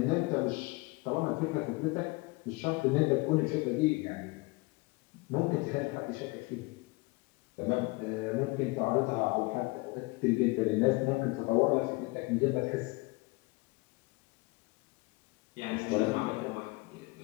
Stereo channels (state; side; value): quieter; right; 24.7 dB